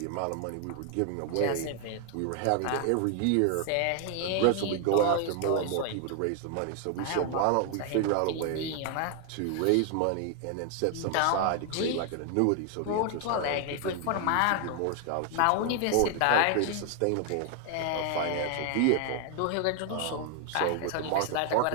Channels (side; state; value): both; different; correlation 0.00